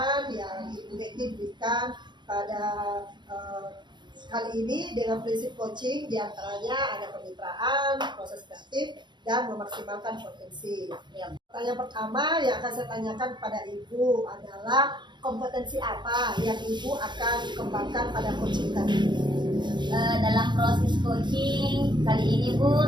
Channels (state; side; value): late; left; 0.22 ms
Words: yang Ibu Hetty berikan pada kali ini dengan prinsip coaching diantaranya ada kemitraan, proses kreatif, dan memaksimalkan potensi. Pertanyaan pertama yang akan saya tanyakan kepada Ibu adalah kompetensi apa yang Ibu akan kembangkan pada coaching tadi? Dalam proses coaching kali ini Bu,